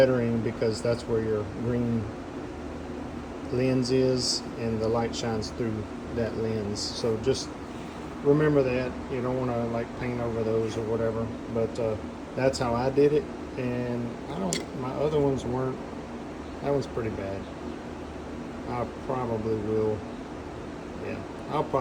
because that's where your green lens is, and the light shines through that lens. So just remember that. You don't want to like paint over those or whatever, but that's how I did it. And my other ones weren't. That one's pretty bad. I probably will, yeah, I'll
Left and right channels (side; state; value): both; identical; correlation 1.00